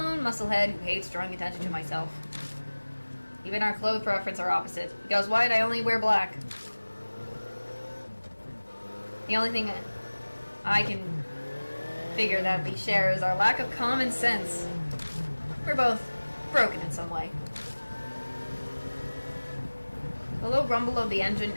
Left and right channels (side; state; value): both; inverted; correlation -1.00